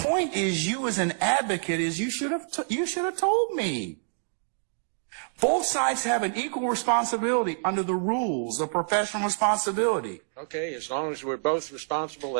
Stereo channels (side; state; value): left; silent; digital silence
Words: is, you as an advocate, is you should have told me. Both sides have an equal responsibility under the rules of professional responsibility. Okay, as long as we're both responsible,